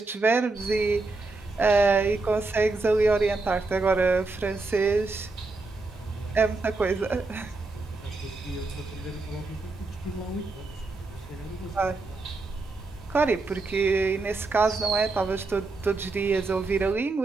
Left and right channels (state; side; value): quieter; left; 3.5 dB